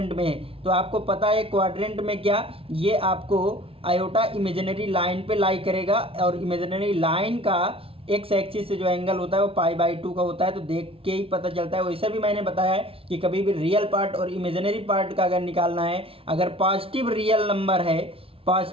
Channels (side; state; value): left; late; 0.27 ms